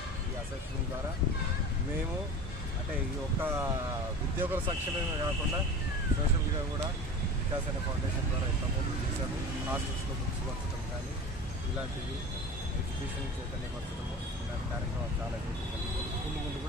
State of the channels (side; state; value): both; normal; correlation 0.35